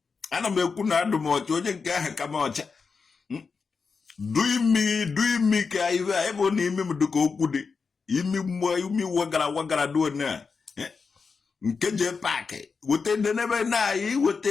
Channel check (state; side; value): quieter; right; 5.1 dB